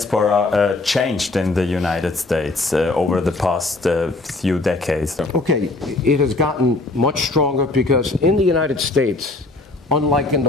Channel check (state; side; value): quieter; right; 3.1 dB